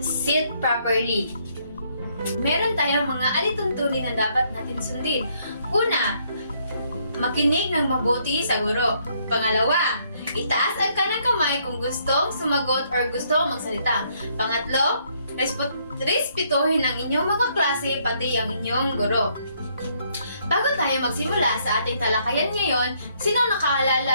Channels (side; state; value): both; inverted; correlation -0.70